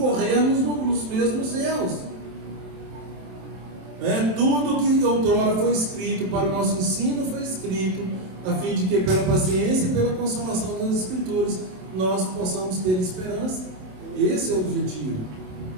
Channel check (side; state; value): left; late; 27 ms